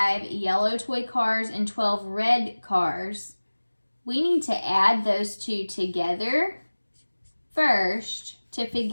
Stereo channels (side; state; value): both; inverted; correlation -1.00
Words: yellow toy cars and 12 red cars, we need to add those two together first to